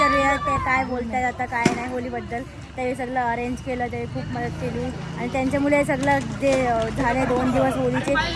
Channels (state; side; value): identical; both; correlation 1.00